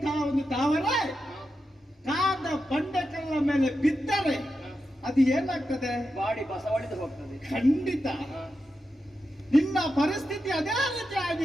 ಒಂದು ತಾವರೆ ಕಾದ ಬಂಡೆಕಲ್ಲ ಮೇಲೆ ಬಿದ್ದರೆ ಅದು ಏನಾಗ್ತದೆ? ಬಾಡಿ ಬಸವಳಿದು ಹೋಗ್ತದೆ. ಖಂಡಿತ ನಿನ್ನ ಪರಿಸ್ಥಿತಿ ಅದೇ ರೀತಿ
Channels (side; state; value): both; normal; correlation 0.88